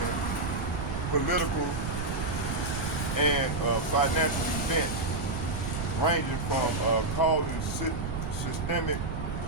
political and financial events, ranging from causing systemic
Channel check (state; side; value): noise; right; rumble, 4 dB below the sound